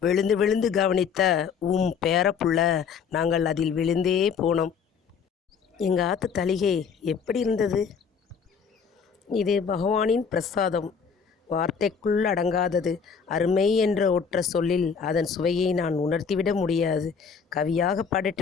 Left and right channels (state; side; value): quieter; right; 6.3 dB